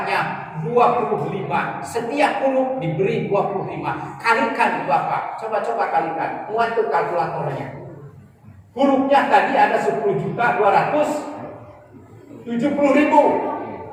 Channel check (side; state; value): both; identical; correlation 1.00